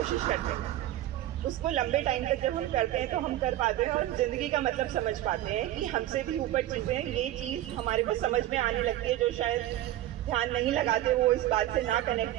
करते हैं। उसको लंबे टाइम तक जब हम करते हैं तो हम कर पाते हैं और ज़िंदगी का मतलब समझ पाते हैं कि हमसे भी ऊपर चीज़ें, ये चीज़ हमारे को समझ में आने लगती है। जो शायद ध्यान नहीं लगाते वो इस बात से ना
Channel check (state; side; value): quieter; left; 14.1 dB